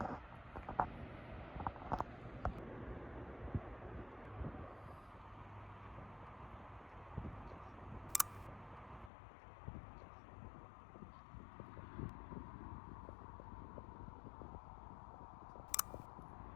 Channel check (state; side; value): drops out; right; at 9.1 s